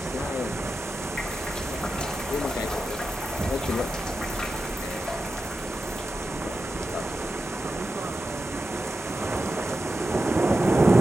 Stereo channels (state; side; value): normal; both; correlation 0.91